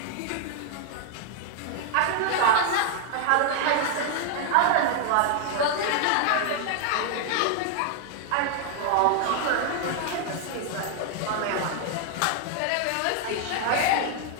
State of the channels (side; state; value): both; different; correlation 0.00